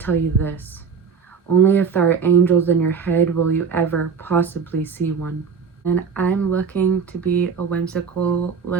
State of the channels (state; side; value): quieter; left; 6.0 dB